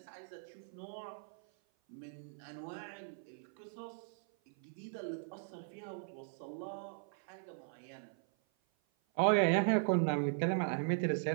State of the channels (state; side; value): silent; left; 52 dB below the other